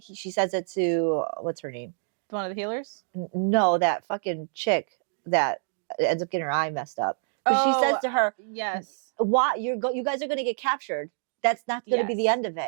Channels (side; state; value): left; silent; digital silence